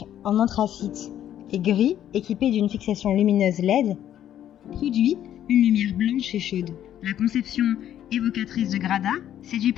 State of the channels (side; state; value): right; quieter; 11.1 dB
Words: en anthracite et gris, équipée d'une fixation lumineuse LED, produit une lumière blanche et chaude. La conception évocatrice de Grada séduit